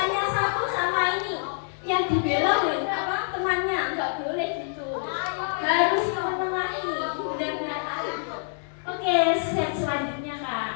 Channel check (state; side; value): silent; right; digital silence